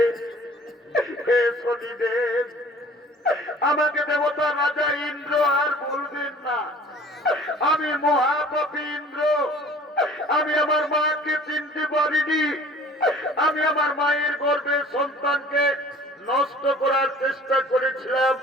হে শনিদেব, আমাকে দেবতা রাজা ইন্দ্র আর বলবেন না। আমি মহাপাপী ইন্দ্র, আমি আমার মাকে চিনতে পারিনি। আমি আমার মায়ের গর্ভে সন্তানকে নষ্ট করার চেষ্টা করেছিলাম।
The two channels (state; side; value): normal; both; correlation 0.49